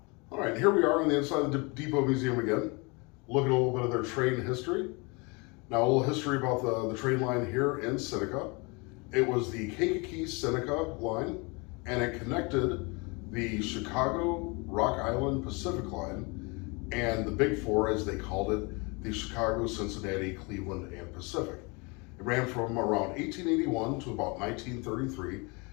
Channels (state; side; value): quieter; right; 29.2 dB